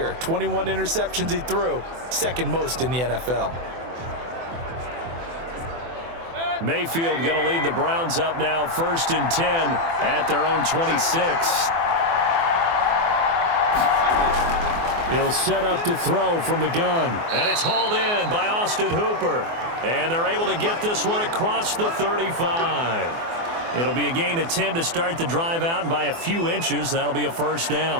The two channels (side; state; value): left; late; 24 ms